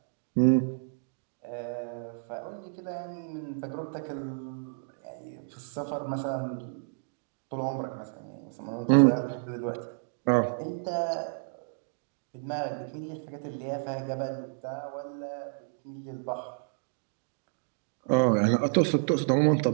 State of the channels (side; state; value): left; silent; digital silence